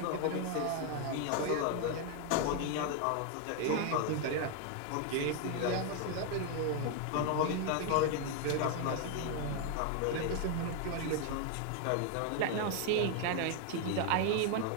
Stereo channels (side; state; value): both; different; correlation 0.01